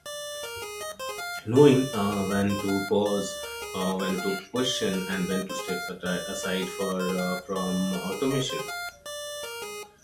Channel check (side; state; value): both; identical; correlation 1.00